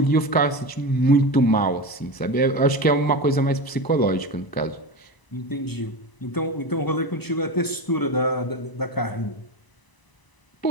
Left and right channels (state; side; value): late; right; 1.0 ms